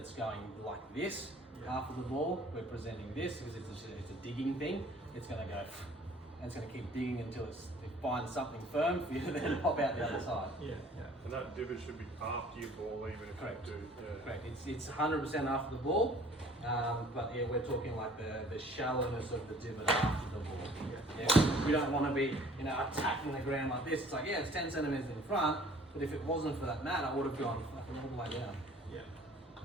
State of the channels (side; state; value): both; normal; correlation 0.53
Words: going like this, half of the ball, we're presenting this because it's a digging thing. It's going to go, and it's going to keep digging until it finds something firm for you to then pop out the other side. Yeah. And that divot should be after your ball, even if Correct. you do. Yeah. Correct. It's 100% after the ball, but yeah, we're talking like the shallowness of the divot after the ball. Yeah. We don't want to be, attacking the ground like this. It's like, yeah, it's 10 centimeters in front, but if it wasn't for that mat, I would have gone fucking all the way down. Yeah.